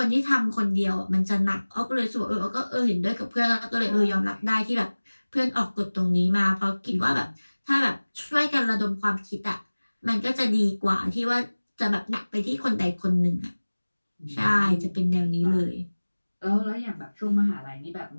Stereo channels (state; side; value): inverted; both; correlation -1.00